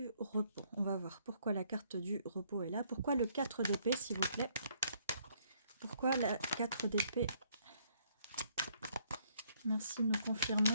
repos. On va voir pourquoi la carte du repos est là. Pourquoi le 4 d'épée, s'il vous plaît? Pourquoi la 4 d'épée? Merci de nous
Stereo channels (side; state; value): both; inverted; correlation -0.67